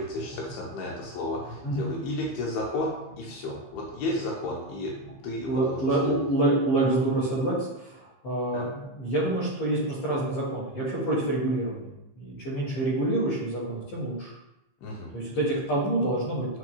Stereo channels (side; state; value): right; late; 15 ms